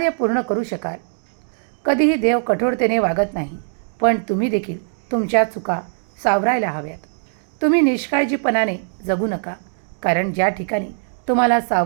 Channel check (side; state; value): left; silent; digital silence